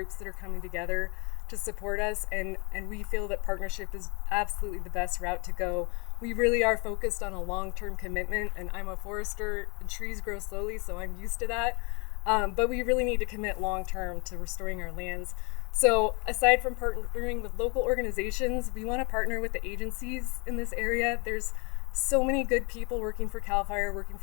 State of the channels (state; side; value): quieter; right; 31.2 dB